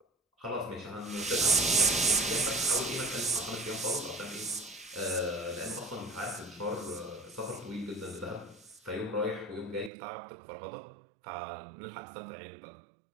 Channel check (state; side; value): drops out; left; at 9.9 s